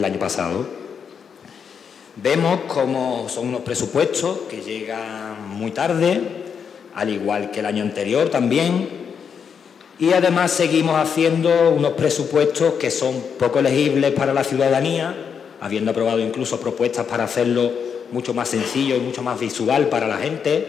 año pasado. Vemos cómo son unos presupuestos que llegan muy tarde, al igual que el año anterior también, y además seguimos haciendo unos presupuestos que son poco legibles para la ciudadanía, habiendo aprobado incluso propuestas para hacerlo mucho más sencillo y mucho más visual para la gente,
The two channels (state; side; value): quieter; right; 6.9 dB